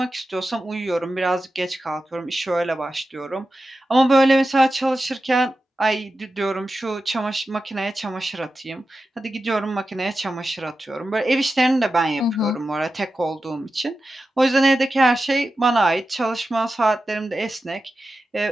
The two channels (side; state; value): both; normal; correlation 0.92